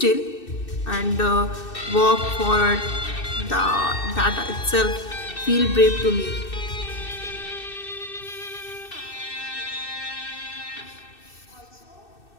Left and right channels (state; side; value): late; right; 2.6 ms